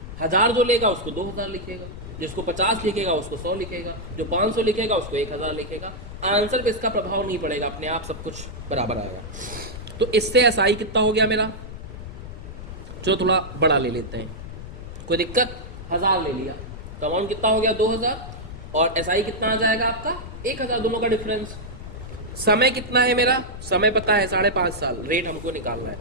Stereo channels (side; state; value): left; noise; rumble, 11 dB below the sound